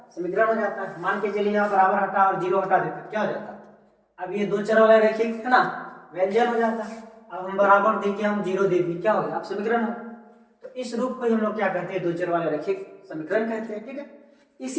समीकरण हो जाता है। मान के चलिए यहाँ बराबर हटा और जीरो हटा देते क्या हो जाता है, अब ये दो चर वाला रैखिक है ना, व्यंजन हो जाता है। अब हम बराबर देके हम जीरो दे दिए, क्या हो गया, अब समीकरण हो। तो इस रूप को हम लोग क्या कहते हैं, दो चर वाले रैखिक समीकरण कहते हैं, ठीक है।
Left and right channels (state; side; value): identical; both; correlation 1.00